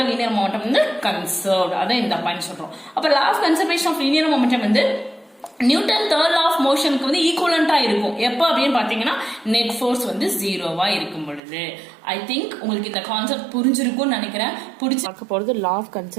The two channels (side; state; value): left; drops out; at 11.4 s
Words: லீனியர் மொமெண்டம் வந்து கன்சர்வ்ட். அதான் இந்த பாயிண்ட் சொல்றோம். அப்ப law of conservation of linear momentum வந்து நியூட்டன் தேர்ட் லா ஆஃப் மோஷனுக்கு வந்து ஈக்குவலண்டா இருக்கும். எப்போ அப்படின்னு பாத்தீங்கன்னா நெட் ஃபோர்ஸ் வந்து ஜீரோவா இருக்கும் பொழுது. ஐ திங்க் உங்களுக்கு இந்த கான்செப்ட் புரிஞ்சிருக்கும்னு நினைக்கிறேன். புடிச்சு பார்க்க போகிறது law of